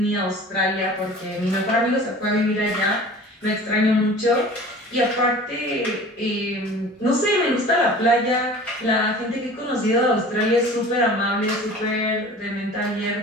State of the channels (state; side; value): normal; both; correlation 0.42